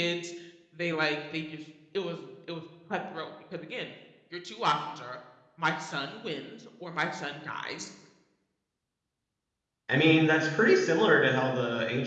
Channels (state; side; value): identical; both; correlation 1.00